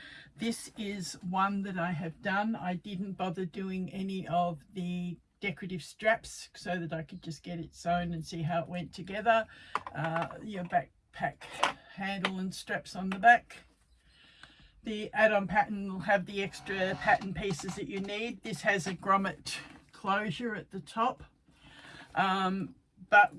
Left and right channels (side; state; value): both; identical; correlation 1.00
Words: This is one that I have done. I didn't bother doing any of the decorative straps so that I could just get it sewn and see how it went together. Your backpack handle and straps on the back. The add-on pattern will have the extra pattern pieces that you need. This has a grommet closure at the top, but